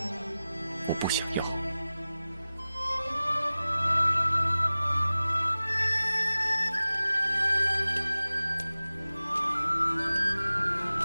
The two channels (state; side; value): inverted; both; correlation -0.96